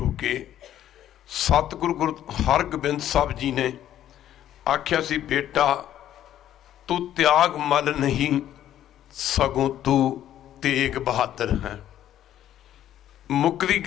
के सतगुरु गुरु हरगोबिंद साहब जी ने आख्या सी, बेटा तू त्यागमल नहीं सगों तू तेग बहादुर है। मुकदी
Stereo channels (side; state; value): right; quieter; 11.7 dB